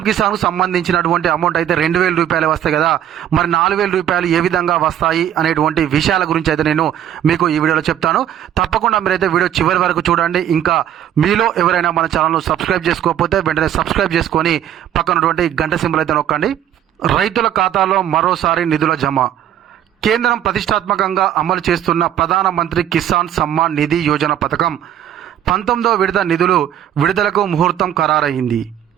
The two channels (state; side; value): quieter; left; 10.6 dB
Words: కిసాన్కు సంబంధించినటువంటి అమౌంట్ అయితే 2,000 రూపాయలు వస్తాయి కదా, మరి 4,000 రూపాయలు ఏ విధంగా వస్తాయి అనేటువంటి విషయాల గురించి అయితే నేను మీకు ఈ వీడియోలో చెప్తాను. తప్పకుండా మీరైతే వీడియో చివరి వరకు చూడండి. ఇంకా మీలో ఎవరైనా మన ఛానల్ను సబ్స్క్రైబ్ చేసుకోకపోతే వెంటనే సబ్స్క్రైబ్ చేసుకొని పక్కనటువంటి గంట సింబల్ అయితే నొక్కండి. రైతుల ఖాతాలో మరోసారి నిధుల జమ. కేంద్రం ప్రతిష్టాత్మకంగా అమలు చేస్తున్న ప్రధానమంత్రి కిసాన్ సమ్మాన్ నిధి యోజన పథకం 19వ విడత నిధులు విడుదలకు ముహూర్తం ఖరారయింది.